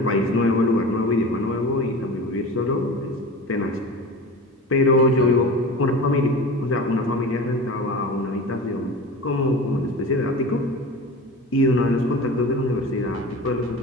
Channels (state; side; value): normal; both; correlation 0.33